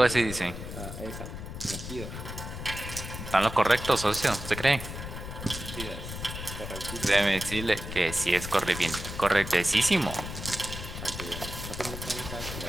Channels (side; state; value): left; noise; rumble, 8 dB below the sound